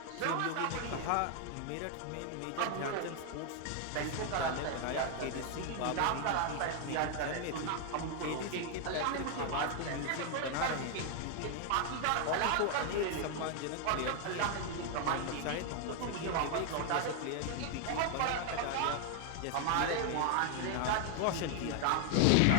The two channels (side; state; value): both; different; correlation 0.00